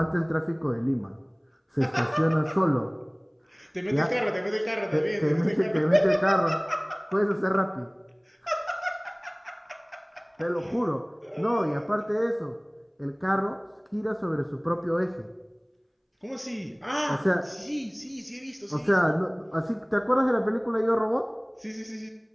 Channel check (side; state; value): both; identical; correlation 1.00